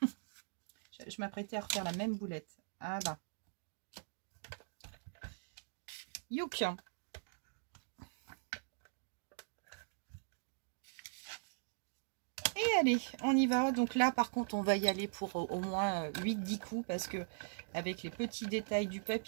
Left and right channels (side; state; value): left; silent; digital silence